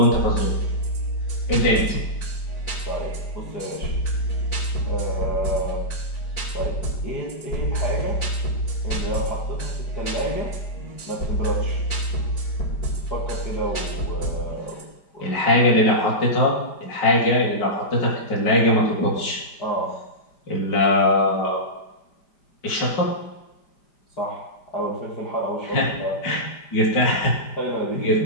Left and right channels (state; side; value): late; right; 5.0 ms